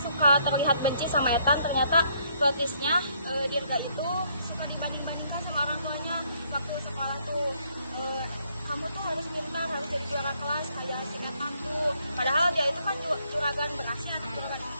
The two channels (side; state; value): both; inverted; correlation -0.69